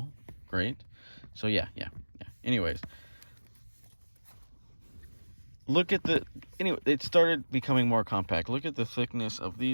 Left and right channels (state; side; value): inverted; both; correlation -1.00